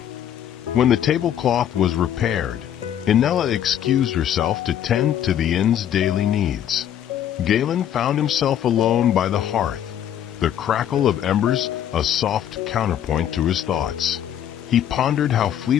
When the tablecloth was repaired, Inella excused herself to tend to the inn's daily needs. Galen found himself alone by the hearth, the crackle of embers a soft counterpoint to his thoughts. He pondered how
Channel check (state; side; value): quieter; right; 10.2 dB